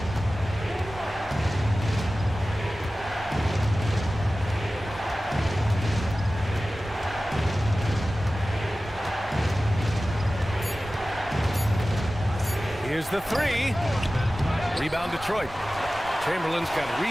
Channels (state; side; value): noise; right; rumble, 18 dB below the sound